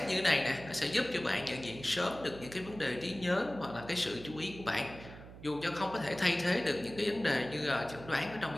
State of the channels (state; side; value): noise; right; hum, 15 dB below the sound